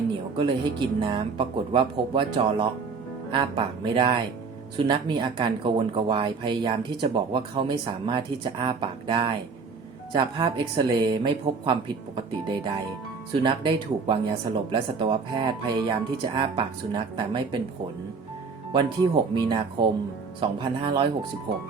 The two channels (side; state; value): left; quieter; 5.0 dB